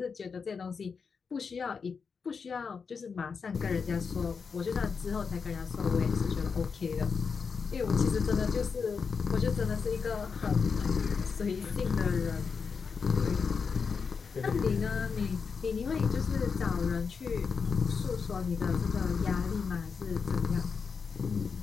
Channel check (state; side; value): quieter; right; 5.5 dB